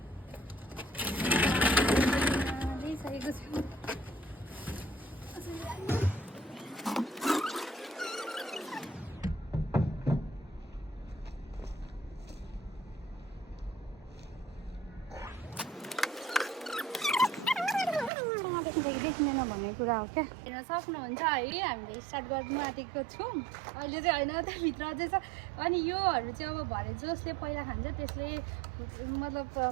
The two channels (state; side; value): drops out; left; at 18.1 s